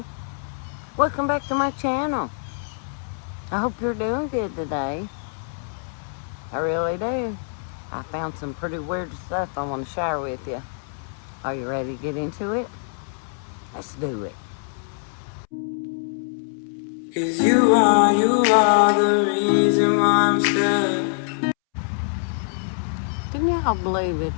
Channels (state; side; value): silent; right; 63 dB below the other